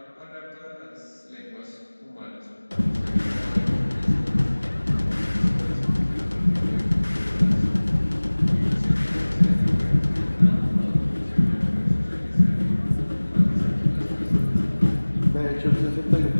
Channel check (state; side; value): inverted; both; correlation -1.00